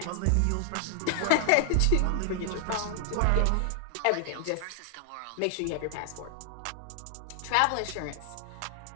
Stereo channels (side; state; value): both; different; correlation 0.00